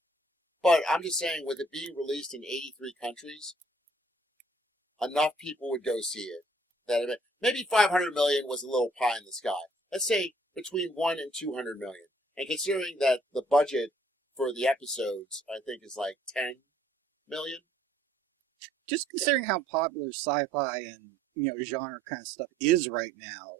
But I'm just saying, with it being released in 83 countries, enough people would go see it. That maybe 500 million was a little pie in the sky. Let's say between 1 and 200 million. And considering that the budget for the episodes, I think, is like 10 million. Just considering how popular sci-fi and genre kind of stuff is right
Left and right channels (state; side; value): normal; both; correlation 0.61